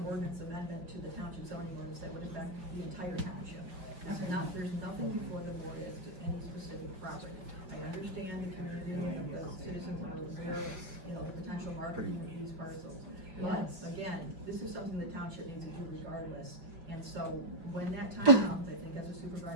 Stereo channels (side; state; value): left; late; 5.5 ms